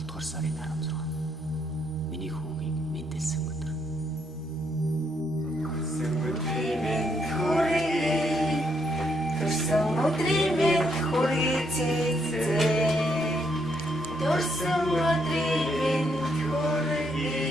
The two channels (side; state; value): both; normal; correlation 0.75